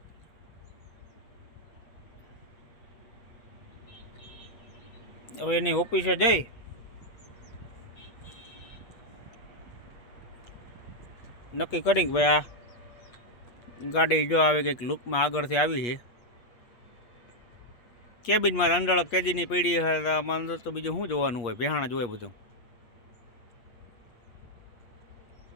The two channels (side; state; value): right; late; 8.4 ms